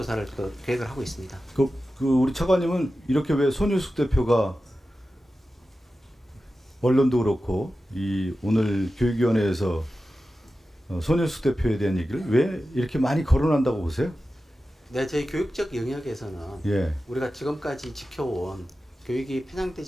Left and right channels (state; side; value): normal; both; correlation 0.93